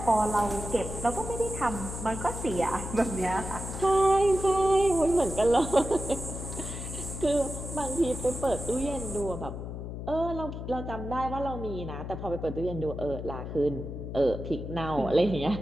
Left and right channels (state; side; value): noise; left; hum, 7 dB below the sound